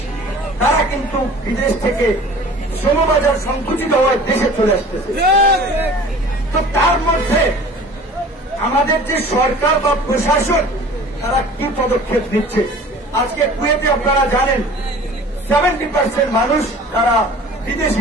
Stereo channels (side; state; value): both; normal; correlation 0.44